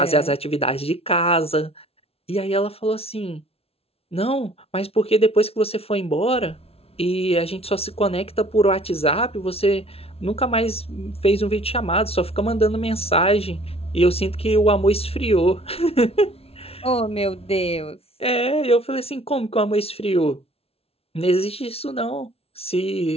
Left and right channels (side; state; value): right; late; 0.29 ms